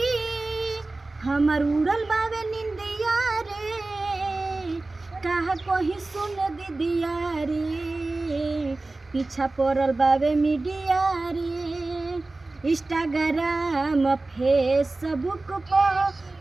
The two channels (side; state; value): left; quieter; 3.2 dB